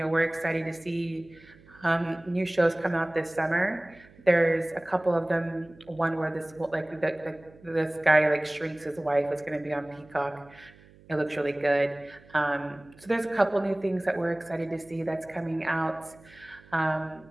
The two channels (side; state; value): right; noise; hum, 25 dB below the sound